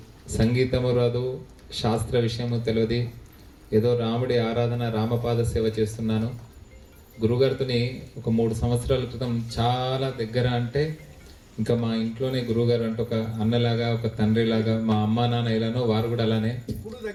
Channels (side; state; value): both; identical; correlation 1.00